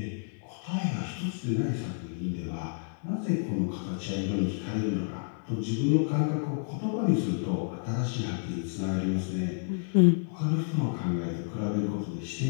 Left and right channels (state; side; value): silent; right; digital silence